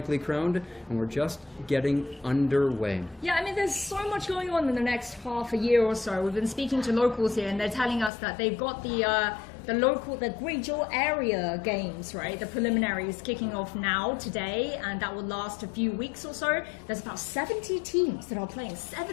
crowned, and we're just getting underway. Yeah, I mean, there's so much going on in the next half a year or so. We've been speaking to locals here, and they're telling us that they've got the Guizhou area games, right? The preliminaries kicking off now, today, and that will last a few weeks or so. There's about 70 teams that are playing,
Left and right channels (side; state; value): right; drops out; at 8.1 s